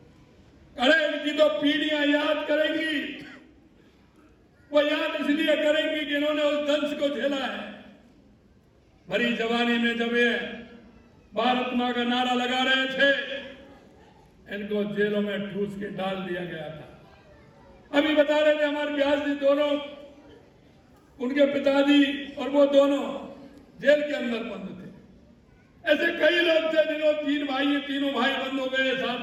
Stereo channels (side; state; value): both; identical; correlation 1.00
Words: अरे इनकी तो पीढ़ियां याद करेंगी। वो याद इसलिए करेंगी कि इन्होंने उस दंश को झेला है। भरी जवानी में जब ये भारत मां का नारा लगा रहे थे, इनको जेलों में ठूस के डाल दिया गया था। अभी बता रहे थे हमारे व्यास जी, दोनों उनके पिताजी और वो दोनों जेल के अंदर बंद थे। ऐसे कई लोग थे जिन्होंने तीनों भाई बंद हो गए, साथ